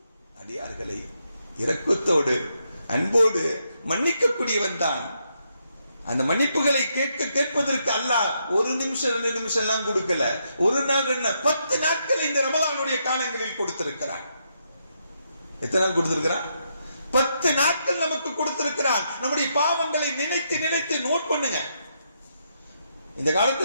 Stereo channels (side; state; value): both; inverted; correlation -0.79